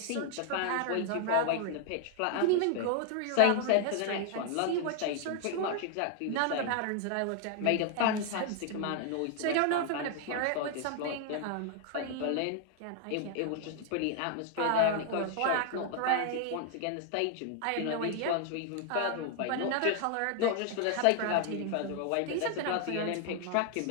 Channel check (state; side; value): different; both; correlation 0.00